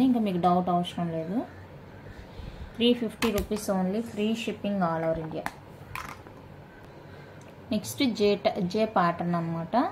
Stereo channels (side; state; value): both; identical; correlation 1.00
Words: ఇంకా మీకు డౌట్ అవసరం లేదు. 350 rupees only, free shipping all over India. Next జే ప్యాటర్న్ అనమాట.